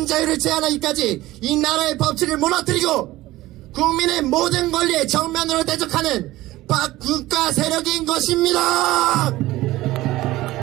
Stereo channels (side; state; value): left; quieter; 17.3 dB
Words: 자유를 제한하기까지 이 나라의 법치를 무너뜨리고 국민의 모든 권리에 정면으로 대적하는 반국가 세력인 것입니다.